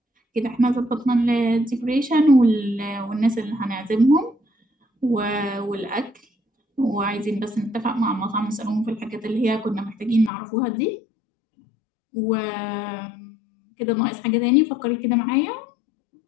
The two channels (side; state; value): right; drops out; at 10.3 s